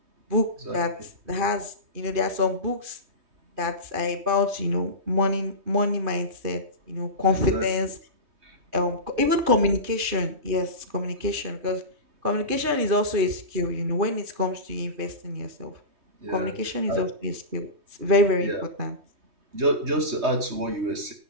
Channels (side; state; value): left; late; 3.2 ms